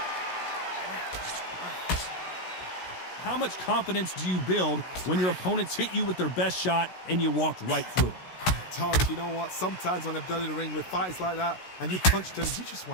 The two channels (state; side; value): late; right; 16 ms